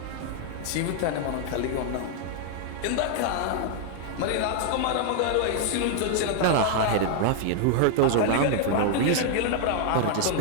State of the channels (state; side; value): different; both; correlation 0.00